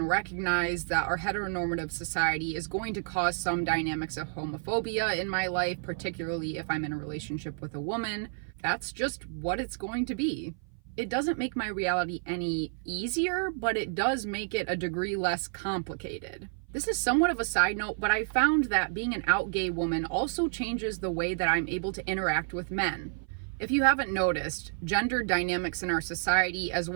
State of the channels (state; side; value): silent; left; 55 dB below the other